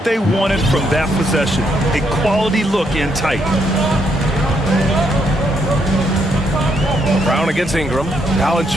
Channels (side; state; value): both; normal; correlation 0.75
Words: they wanted from that possession. A quality look in tight. Brown against Ingram.